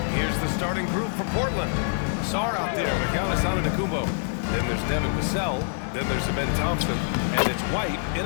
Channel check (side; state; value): right; silent; digital silence